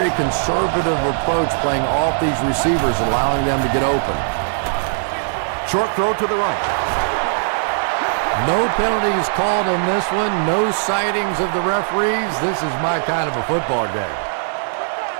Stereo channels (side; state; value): left; silent; digital silence